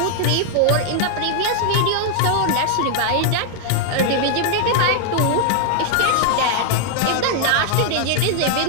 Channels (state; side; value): different; both; correlation 0.00